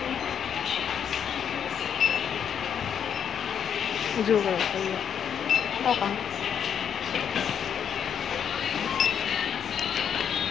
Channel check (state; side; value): quieter; right; 8.2 dB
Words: dù rồi, tao còn